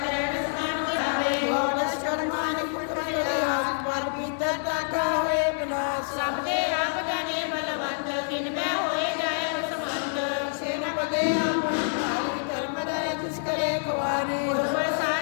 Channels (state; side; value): silent; right; digital silence